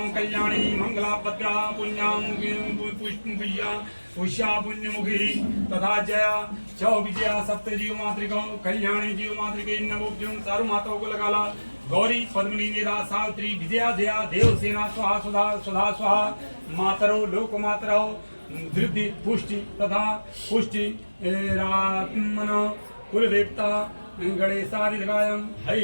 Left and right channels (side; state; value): both; inverted; correlation -1.00